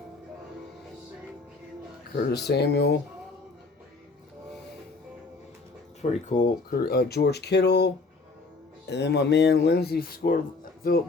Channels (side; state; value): right; quieter; 3.8 dB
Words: Curtis Samuel. Pretty cool. George Kittle. And then my man